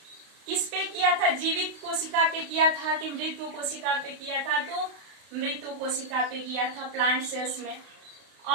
किस पे किया था, जीवित कोशिका पे किया था कि मृत कोशिका पे किया था, तो मृत कोशिका पे किया था, प्लांट सेल्स में।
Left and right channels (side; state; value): left; late; 32 ms